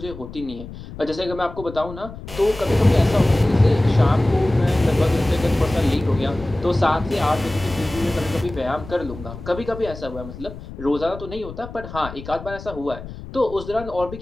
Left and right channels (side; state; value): left; noise; rumble, 13 dB below the sound